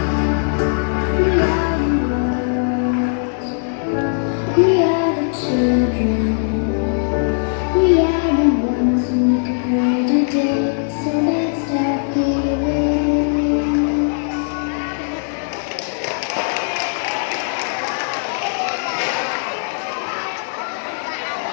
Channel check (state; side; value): silent; right; digital silence